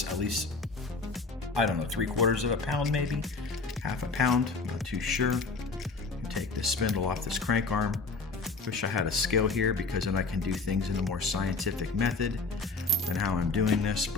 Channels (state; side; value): quieter; right; 4.0 dB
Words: at least, I don't know, 3/4 of a pound, maybe, half a pound, I'm not too sure. Take this spindle off this crank arm. Wish I had a scale here, because then I can do things in a more scientific method than how I'm doing this,